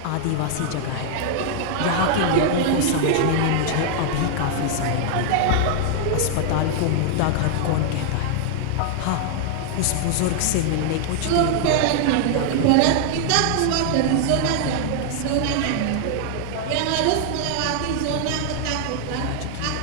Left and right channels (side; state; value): both; different; correlation 0.00